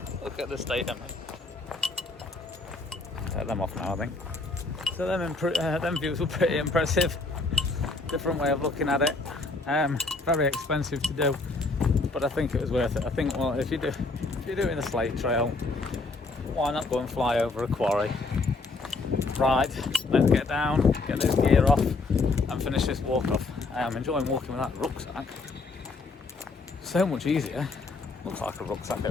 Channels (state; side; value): quieter; right; 3.6 dB